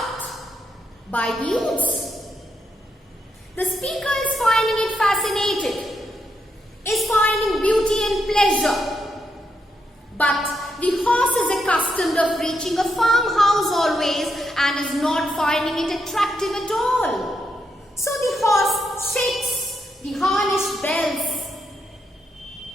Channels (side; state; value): both; normal; correlation 0.80